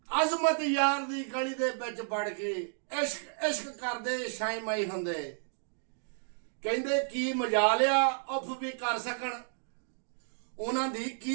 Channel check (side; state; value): left; silent; digital silence